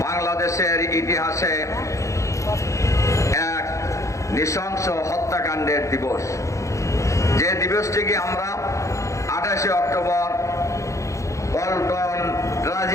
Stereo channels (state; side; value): late; right; 0.15 ms